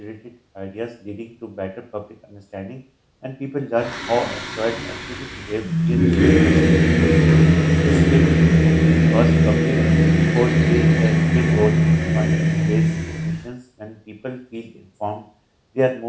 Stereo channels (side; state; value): both; identical; correlation 1.00